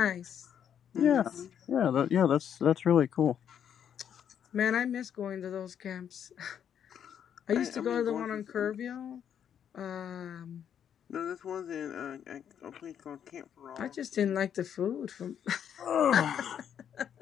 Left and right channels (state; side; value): quieter; right; 8.8 dB